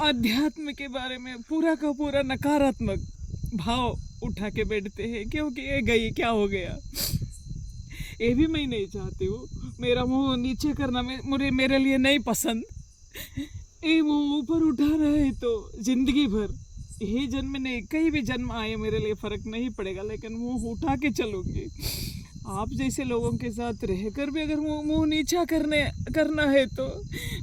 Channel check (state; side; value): identical; both; correlation 1.00